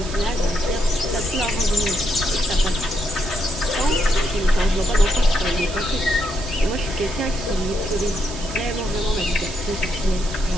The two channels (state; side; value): noise; right; hiss, 12 dB below the sound